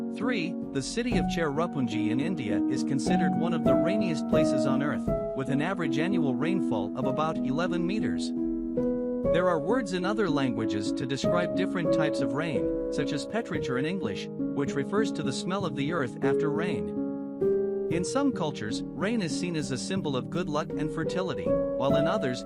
3. The city of Cherrapunji in India is considered one of the rainiest places on Earth, with an average annual rainfall of about 11 meters. There are words in other languages to describe different types of rain, such as petrichor in English, which refers to the smell of the earth after rain. In some cultures, rain is seen as a symbol of good luck and fertility, while in others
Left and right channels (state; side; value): identical; both; correlation 1.00